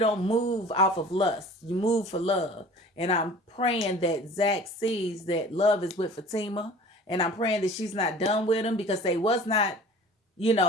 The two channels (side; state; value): both; normal; correlation 0.44